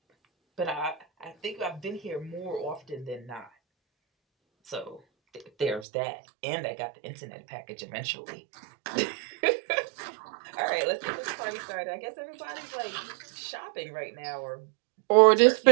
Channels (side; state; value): left; drops out; at 5.9 s